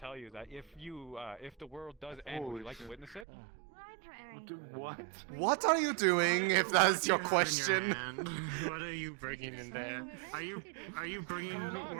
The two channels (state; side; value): drops out; left; at 3.2 s